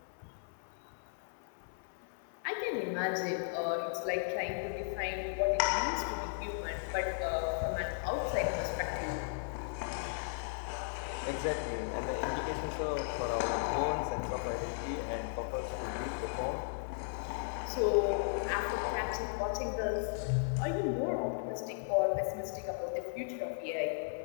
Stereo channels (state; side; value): silent; right; 54 dB below the other